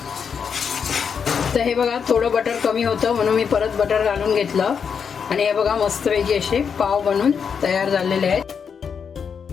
तर हे बघा थोडं बटर कमी होतं म्हणून मी परत बटर घालून घेतलं आणि हे बघा मस्तपैकी असे पाव बनवून तयार झालेले आहेत.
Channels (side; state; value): right; quieter; 6.6 dB